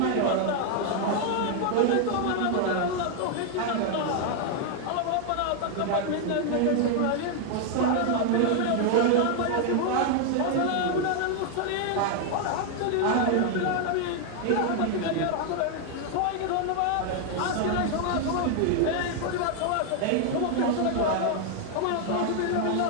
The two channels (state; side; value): different; both; correlation 0.00